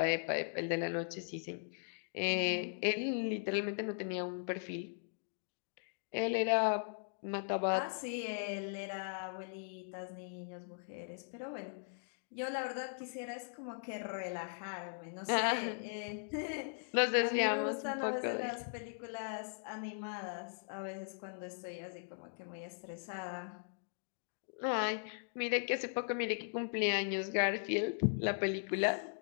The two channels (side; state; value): right; silent; digital silence